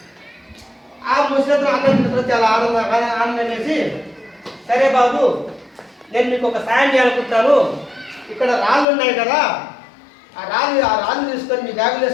ఆ ముసతుడు అన్నం తింటారు, చాలా ఆనందం వేసి, సరే బాబు నేను మీకు ఒక సాయం చేయాలనుకుంటాను, ఇక్కడ రాళ్ళు ఉన్నాయి కదా, ఆ రాళ్ళు తీసుకొని మీ బ్యాగులు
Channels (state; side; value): drops out; right; at 8.8 s